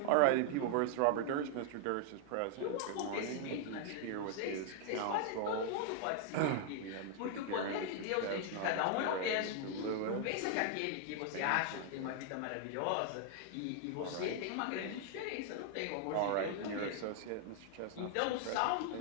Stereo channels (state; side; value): different; both; correlation 0.00